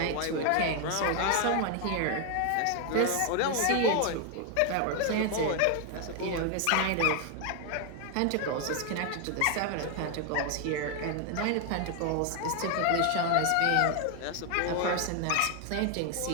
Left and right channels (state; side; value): different; both; correlation 0.01